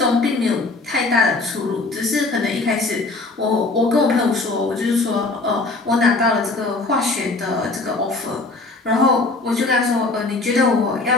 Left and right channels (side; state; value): right; quieter; 3.4 dB